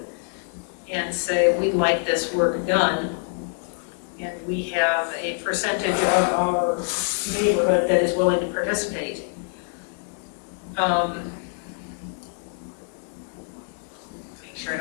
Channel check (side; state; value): right; silent; 62 dB below the other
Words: and say, we'd like this work done, and we have a percentage of our neighborhood that is willing to participate. Make sure I